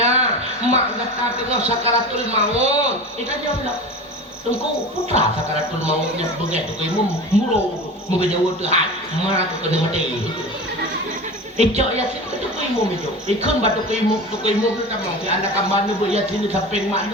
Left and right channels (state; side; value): normal; both; correlation 0.32